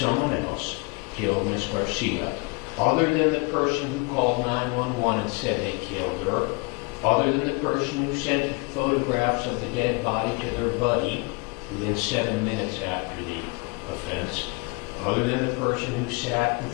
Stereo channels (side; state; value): right; quieter; 30.0 dB